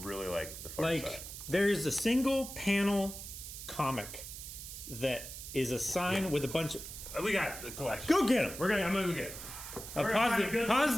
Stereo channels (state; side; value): noise; right; hiss, 10 dB below the sound